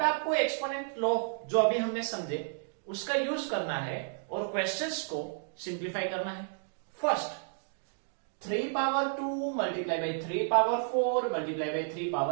आपको एक्सपोनेंट लॉ जो अभी हमने समझे उसका यूज करना है और क्वेश्चंस को सिंप्लीफाई करना है। First, 3 power 2 multiply by 3 power 4 multiply by 3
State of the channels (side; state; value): left; silent; digital silence